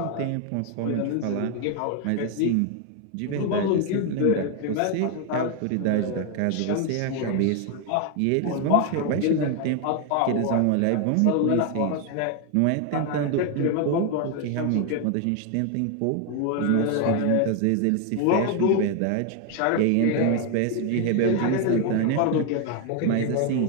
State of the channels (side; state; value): both; different; correlation 0.01